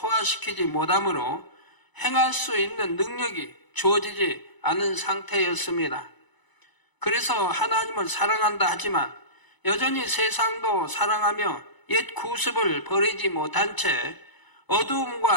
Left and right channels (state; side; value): late; right; 1.0 ms